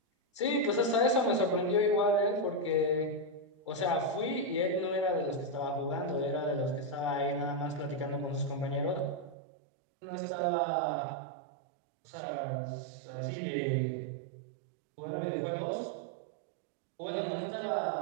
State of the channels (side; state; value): left; drops out; at 9.3 s